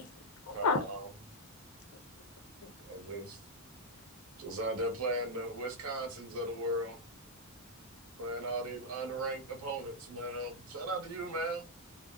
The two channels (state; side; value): normal; both; correlation -0.06